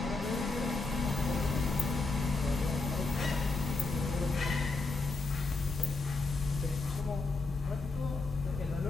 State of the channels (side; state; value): right; quieter; 3.7 dB